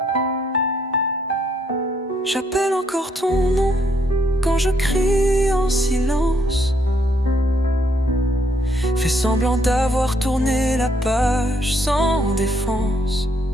J'appelle encore ton nom quand je crie en silence. Fais semblant d'avoir tourné la page sans défense,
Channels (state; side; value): normal; both; correlation 0.71